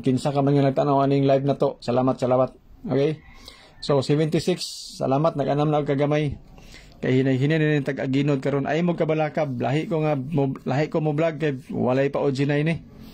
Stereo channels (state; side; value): identical; both; correlation 1.00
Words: kinsa ka man nga nagtanaw aning live na to, salamat. Okay? So 76, salamat, nag-anam na og kagamay. Kay hinay-hinay ni tag-aginod karon. Ay mo kabalakab, lahi ko mo vlog kay walay pa original ni.